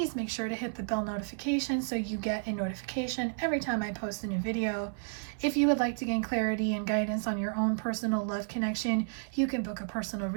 make sure to hit the bell notification so you get a notification every time I post a new video. If you would like to gain clarity and guidance on your own personal love connection, you can book a personal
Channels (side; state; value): left; silent; 57 dB below the other